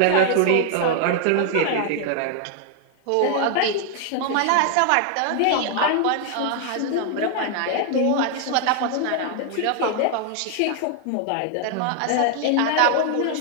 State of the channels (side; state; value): both; different; correlation 0.00